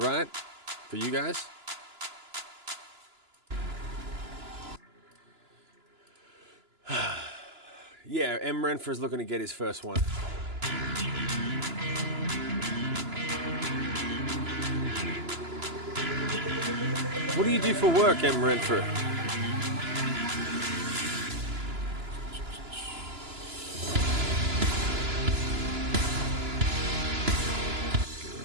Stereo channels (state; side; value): late; left; 2.9 ms